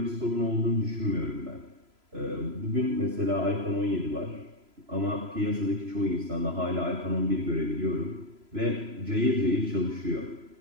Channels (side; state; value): left; late; 3.0 ms